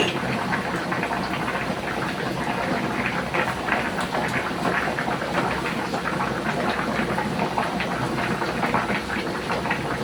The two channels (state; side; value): identical; both; correlation 1.00